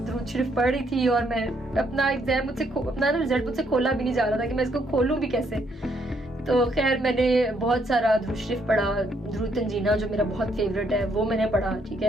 शरीफ पढ़ रही थी और मैं अपना एग्जाम अपना रिजल्ट मुझसे खोला भी नहीं जा रहा था कि मैं इसको खोलूं भी कैसे। तो खैर मैंने बहुत सारा दुरूद शरीफ पढ़ा, दुरूद तंजीना जो मेरा बहुत फेवरेट है वो मैंने पढ़ा, ठीक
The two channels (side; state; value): both; normal; correlation 0.72